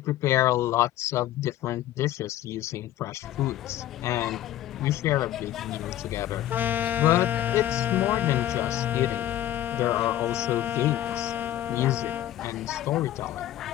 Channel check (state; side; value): quieter; right; 13.1 dB